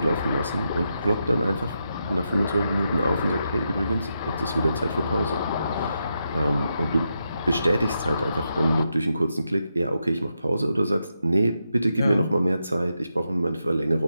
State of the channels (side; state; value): both; inverted; correlation -0.85